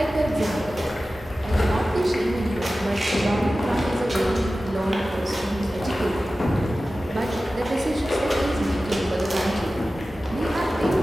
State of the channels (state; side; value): normal; both; correlation 0.95